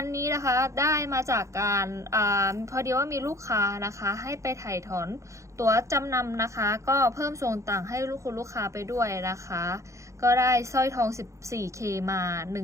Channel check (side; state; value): left; late; 0.15 ms